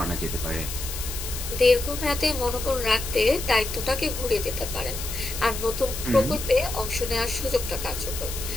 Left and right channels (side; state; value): left; noise; hiss, 7 dB below the sound